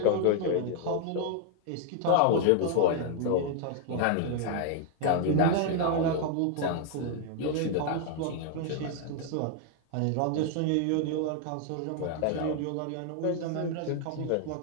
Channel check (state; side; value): different; both; correlation 0.00